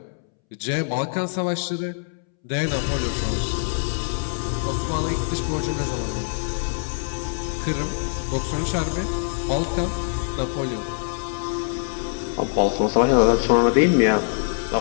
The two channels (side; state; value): right; silent; 63 dB below the other